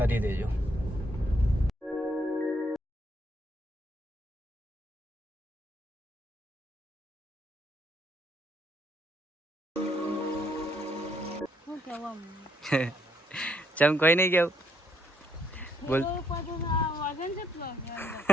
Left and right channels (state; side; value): normal; both; correlation 0.72